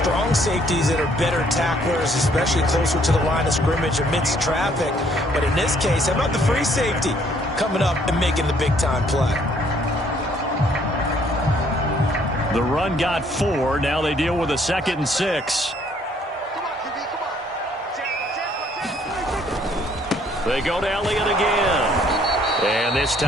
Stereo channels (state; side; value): normal; both; correlation 0.64